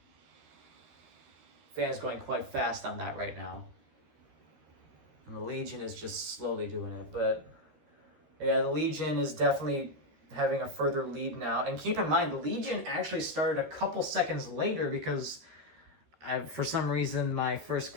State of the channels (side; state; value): left; late; 13 ms